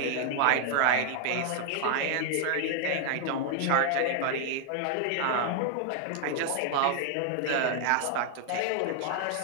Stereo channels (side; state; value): both; different; correlation 0.00